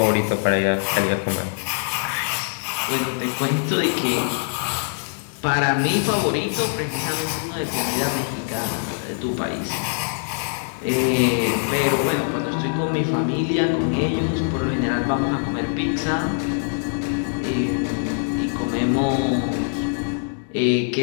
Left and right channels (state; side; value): silent; right; 63 dB below the other